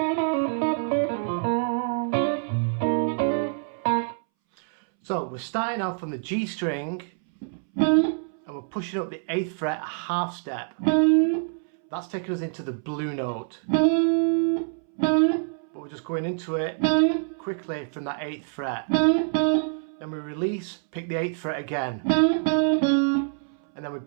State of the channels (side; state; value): left; silent; 61 dB below the other